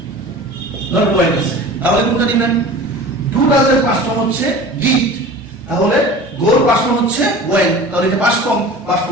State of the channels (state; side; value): normal; both; correlation 0.38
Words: নট ওয়েন্ট আছে, তাহলে কোনটা নেবেন? ডু ডাজ এর পাস্ট ফর্ম হচ্ছে ডিড, তাহলে গোর পাস্ট ফর্ম হচ্ছে ওয়েন্ট, তাহলে এটা পাস্ট ফর্ম, পাস্ট